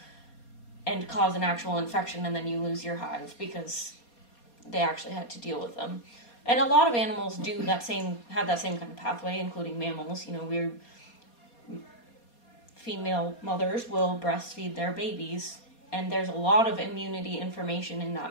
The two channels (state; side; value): late; right; 4.2 ms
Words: and cause an actual infection, and then you lose your hive because they actually had to deal with them. And a lot of animals have that same kind of pathway, including mammals. You know, female mothers will breastfeed their babies, and there's a lot of immunity information in